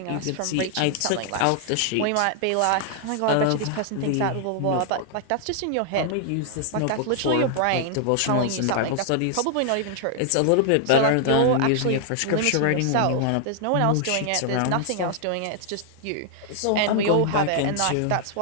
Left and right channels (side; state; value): both; different; correlation 0.00